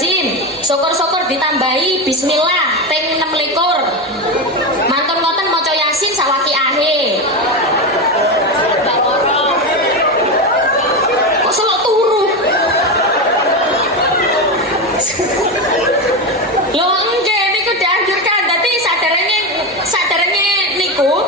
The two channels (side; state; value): both; normal; correlation 0.15